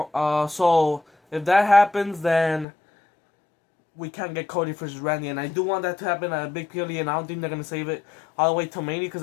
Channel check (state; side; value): drops out; right; at 2.7 s